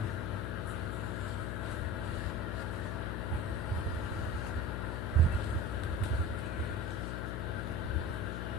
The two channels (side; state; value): left; noise; hum, 1 dB below the sound